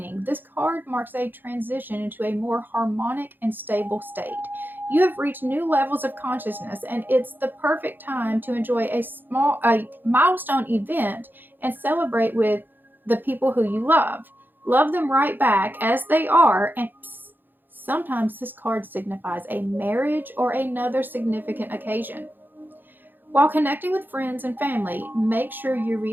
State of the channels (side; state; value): left; late; 0.092 ms